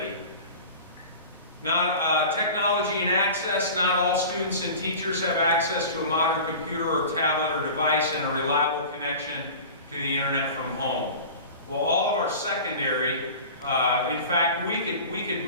Now, technology and access. Not all students and teachers have access to a modern computer or tablet or device and a reliable connection to the internet from home. Well, all of our secondary, in fact, we could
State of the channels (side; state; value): both; inverted; correlation -0.36